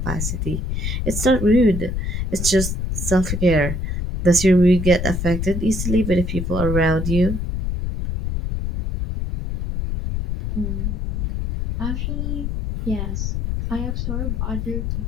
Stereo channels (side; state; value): left; noise; rumble, 2 dB below the sound